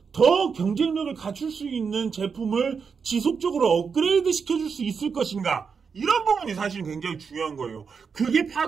더 경쟁력을 갖출 수 있는 제품을 지속적으로 업그레이드 시켜줄 수 있을 것인가 이런 부분이 사실 굉장히 중요한 거예요. 그게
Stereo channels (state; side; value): quieter; left; 5.8 dB